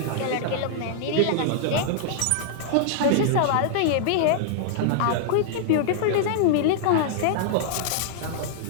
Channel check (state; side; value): different; both; correlation -0.01